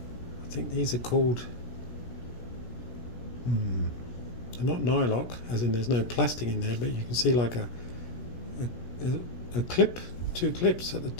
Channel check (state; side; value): late; right; 17 ms